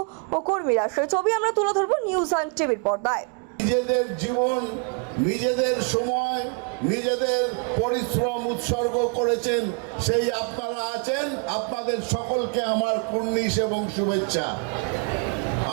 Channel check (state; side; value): quieter; left; 38.0 dB